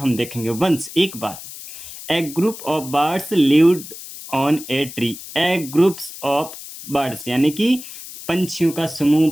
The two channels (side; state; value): left; noise; hiss, 13 dB below the sound